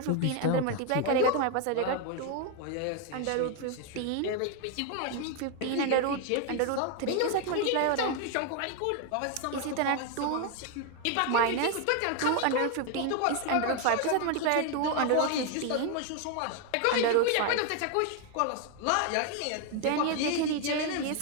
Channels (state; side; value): different; both; correlation 0.00